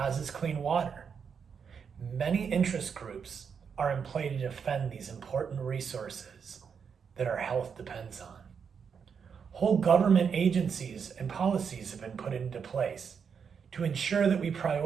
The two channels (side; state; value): left; quieter; 6.6 dB